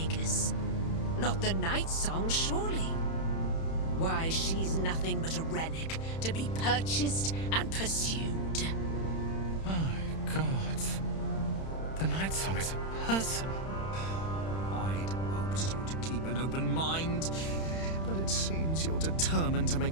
Not the night song, surely? Why, she's nothing but a relic to be purchased and pursued. My God. The night song is a person. I'd hoped you to keep an open mind, but it seems you're determined to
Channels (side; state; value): right; late; 31 ms